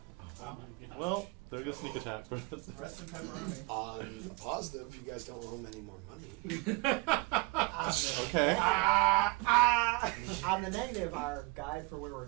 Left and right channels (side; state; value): left; quieter; 27.3 dB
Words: Oh my gosh. Well, they're gonna sneak attack for us. Rest in pepperoni. On the positive, you guys don't owe him any more money. Okay. On the negative, our guide for where we're